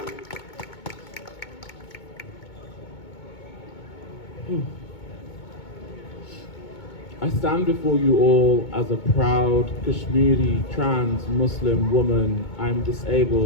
I stand before you all as a proud Kashmiri trans Muslim woman. I'm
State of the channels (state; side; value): late; right; 2.2 ms